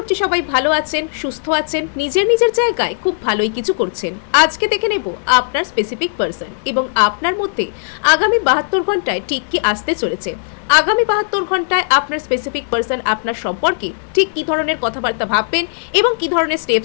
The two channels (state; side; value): silent; right; digital silence